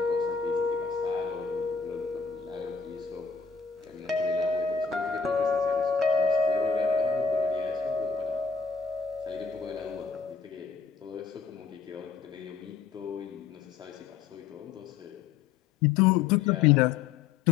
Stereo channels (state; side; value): quieter; right; 5.9 dB